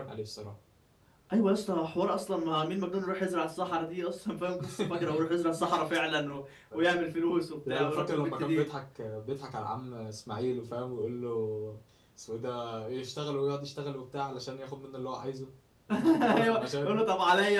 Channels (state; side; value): identical; both; correlation 1.00